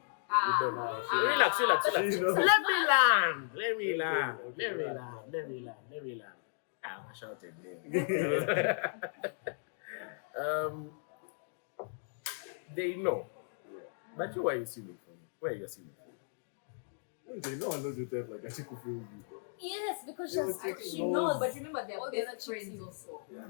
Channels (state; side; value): silent; right; digital silence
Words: You don't know. Relax. She knows. Let me land. Let me land. I shouted there. They know. But you are assuming for me. Why are you assuming for me? No one knows your type like that. She could feel you, bro. Yes, because Yo, she's chick She knows. knows, but remember they're All the best other chicks friends you- also. Yeah,